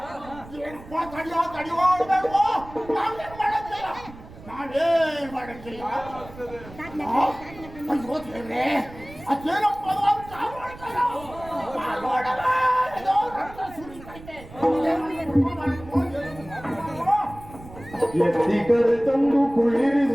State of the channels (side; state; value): right; noise; rumble, 18 dB below the sound